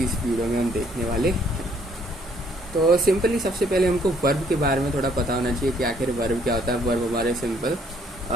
इस वीडियो में हम देखने वाले हैं। तो सिंपली सबसे पहले हमको वर्ब के बारे में थोड़ा पता होना चाहिए कि आखिर वर्ब क्या होता है। वर्ब हमारे सिंपल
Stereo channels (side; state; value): both; normal; correlation 0.65